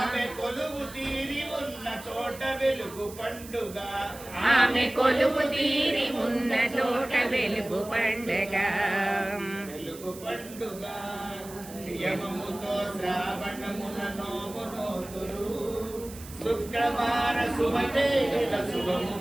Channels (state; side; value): noise; right; hiss, 16 dB below the sound